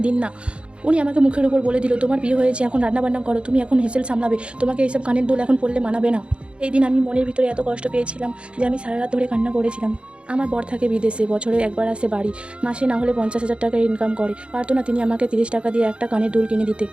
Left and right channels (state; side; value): late; left; 0.057 ms